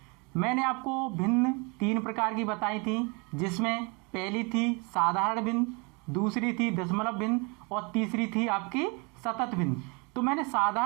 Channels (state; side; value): quieter; left; 30.0 dB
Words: मैंने आपको भिन्न 3 प्रकार की बताई थी, जिसमें पहली थी साधारण भिन्न, दूसरी थी दशमलव भिन्न और तीसरी थी आपकी सतत भिन्न। तो मैंने